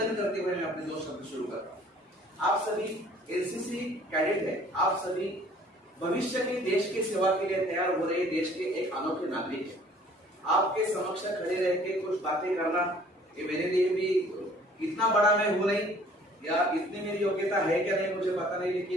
करते हुए मैं अपने 2 शब्द शुरू करता हूँ। आप सभी एनसीसी कैडेट है, आप सभी भविष्य के देश की सेवा के लिए तैयार हो रहे देश के एक अनोखे नागरिक है। आपके समक्ष खड़े रह के कुछ बातें करना ये मेरे लिए भी इतना बड़ा मैं हूं नहीं, या इतनी मेरी योग्यता है क्या नहीं मुझे पता नहीं,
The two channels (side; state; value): both; normal; correlation 0.55